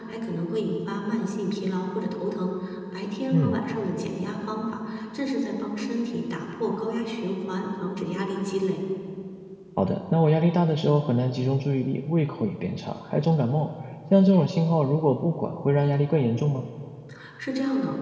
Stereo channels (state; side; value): identical; both; correlation 1.00